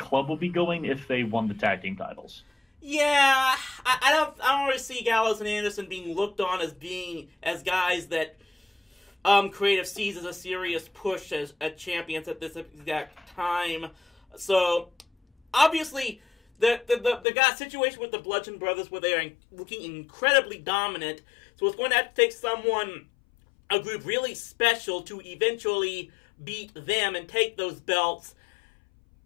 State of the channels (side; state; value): right; drops out; at 17.2 s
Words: will be going if they won the tag team titles. Yeah, I don't really see Gallows and Anderson being looked on as guys that creative sees as a serious push as champions at this exact time. So obviously the got situation with the Bludgeon Brothers where they are looking incredibly dominant. So it's going to have to take a group really special to eventually beat them and take those belts.